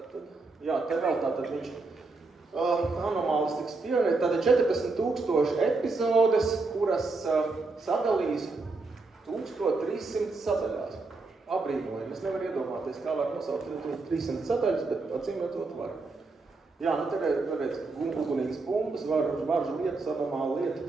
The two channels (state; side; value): quieter; left; 3.7 dB